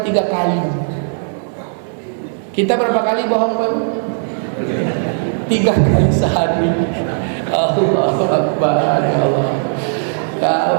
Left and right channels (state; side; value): silent; left; digital silence